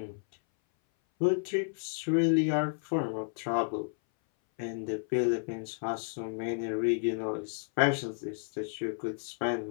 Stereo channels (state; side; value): silent; right; 57 dB below the other